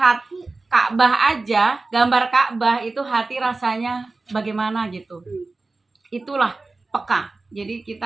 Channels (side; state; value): left; quieter; 3.5 dB